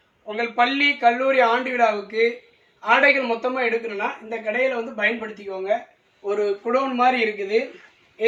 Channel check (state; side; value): identical; both; correlation 1.00